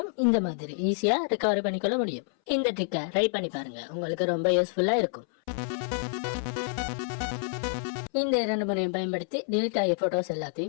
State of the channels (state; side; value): silent; right; 59 dB below the other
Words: இந்த மாதிரி ஈஸியா ரெக்கவரி பண்ணிக்கொள்ள முடியும். இந்த ட்ரிக்கை ட்ரை பண்ணி பாருங்க, உங்களுக்கு ரொம்ப யூஸ்ஃபுல்லா இருக்கும். இந்த 2 முறையும் பயன்படுத்தி டெலிட் ஆகிய போட்டோஸ்